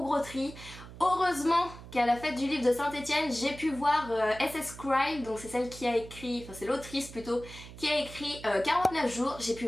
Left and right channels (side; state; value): right; noise; hum, 15 dB below the sound